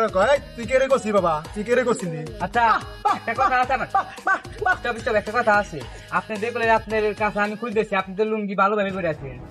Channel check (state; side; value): identical; both; correlation 1.00